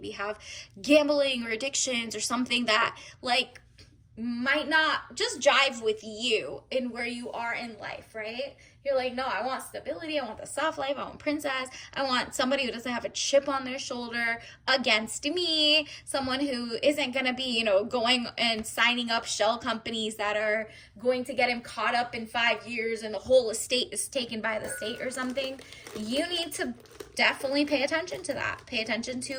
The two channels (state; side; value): identical; both; correlation 1.00